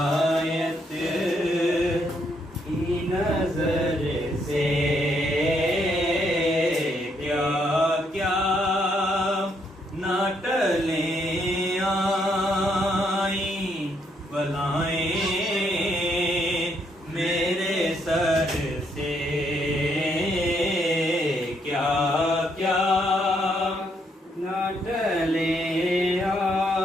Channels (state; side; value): normal; both; correlation 0.74